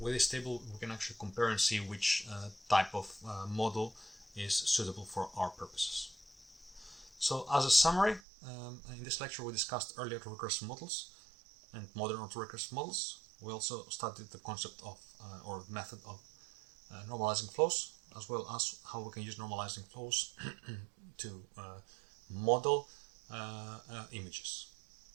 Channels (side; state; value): left; drops out; at 8.2 s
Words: with this table we can actually compare and see which type of model is suitable for our purposes. So as a summary, in this lecture we discussed early autorecursive models and modern autorecursive models. We also studied the concept of or method of normalizing flows, as well as how we can use normalizing flows to model images.